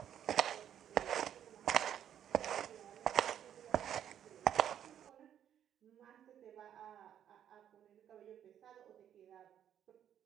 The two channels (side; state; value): left; quieter; 9.9 dB